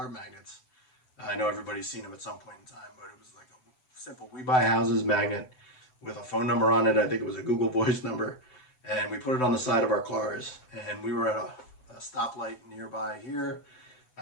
magnets. I know everybody's seen them at some point in time, but it was like a simple "We Buy Houses" magnet with a phone number on it. I think it was a Google Voice number, and we put it on the side of our cars. And we were at a stoplight nearby here.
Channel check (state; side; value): late; right; 7.9 ms